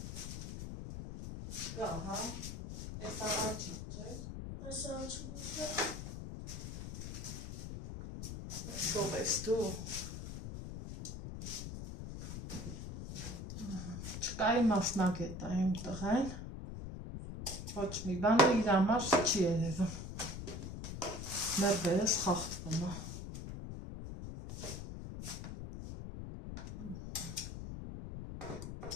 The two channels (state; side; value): noise; left; rumble, 7 dB below the sound